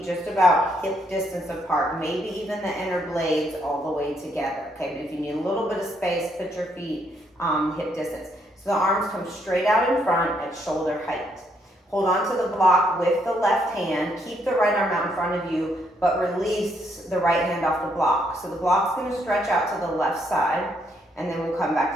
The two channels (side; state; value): both; normal; correlation 0.73